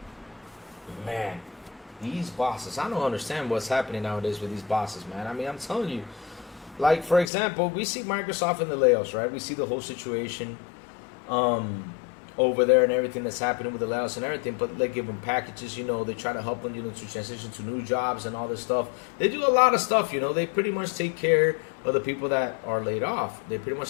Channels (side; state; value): right; drops out; at 7.3 s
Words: Man, these bosses, I don't understand what's happening nowadays with these bosses, man. I mean, I'm telling you, like, for example, we see Microsoft in the layoffs, right? We see the whole situation over there and everything that's happening with the layoffs and everything, but they give them packages, you know, they try to help them, you know, to transition to new jobs and all this stuff. They do a lot of stuff, you know, they pretty much take care of the people that are laid off. They pretty